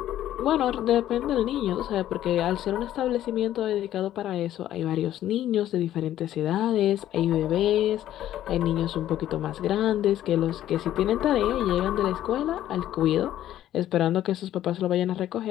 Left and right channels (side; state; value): right; quieter; 12.5 dB